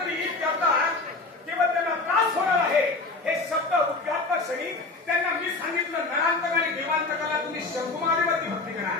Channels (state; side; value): quieter; right; 3.5 dB